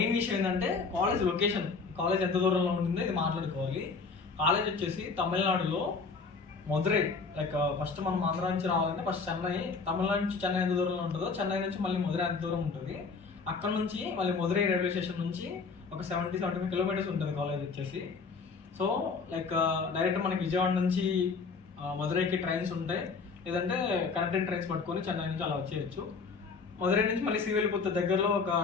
విషయం ఏంటంటే కాలేజ్ లొకేషన్, కాలేజ్ ఎంత దూరంలో ఉంటుందో ఇది మాట్లాడుకోవాలి. కాలేజ్ వచ్చేసి తమిళనాడులో మదురై, లైక్ ఫస్ట్ మనం ఆంధ్ర నుంచి రావాలంటే ఫస్ట్ చెన్నై, తమిళనాడు నుంచి చెన్నై ఎంత దూరంలో ఉంటుందో చెన్నై నుంచి మళ్ళీ మదురై ఎంత దూరం ఉంటుంది. అక్కడ నుంచి మళ్ళీ మదురై రైల్వే స్టేషన్ నుంచి ఒక 70-75 కిలోమీటర్స్ ఉంటుంది కాలేజ్ వచ్చేసి. సో లైక్ డైరెక్ట్ మనకి విజయవాడ నుంచి మదురైకి ట్రైన్స్ ఉంటాయి, లేదంటే కనెక్టింగ్ ట్రైన్స్ పట్టుకొని చెన్నై నుంచి అలా వచ్చేయచ్చు. మదురై నుంచి మళ్ళీ శ్రీవిల్లిపుత్తూర్ దగ్గరలో ఒక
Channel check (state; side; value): quieter; right; 4.8 dB